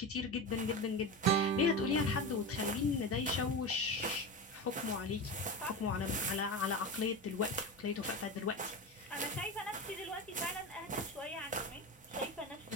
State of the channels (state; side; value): normal; both; correlation 0.23